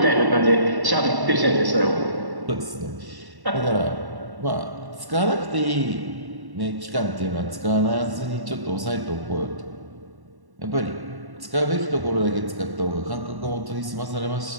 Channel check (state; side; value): late; left; 1.1 ms